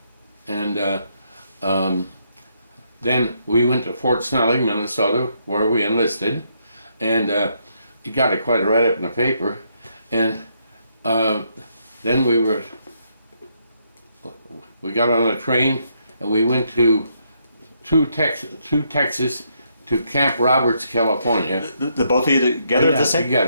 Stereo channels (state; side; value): inverted; both; correlation -0.75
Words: And then we went to Fort Snelling, Minnesota, where we enlisted, and it got quite a write-up in the paper, and then we got on a train and we went to Texas to Camp Roberts, California. The both of you together at the same?